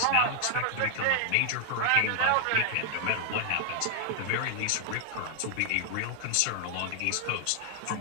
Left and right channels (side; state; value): both; different; correlation 0.00